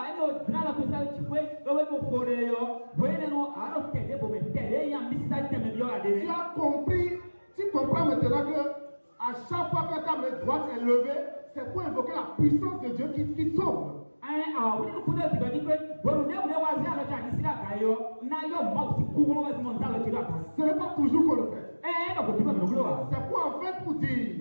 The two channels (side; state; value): both; inverted; correlation -1.00